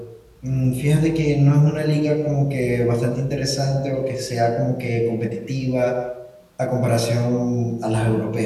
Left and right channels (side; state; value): both; identical; correlation 1.00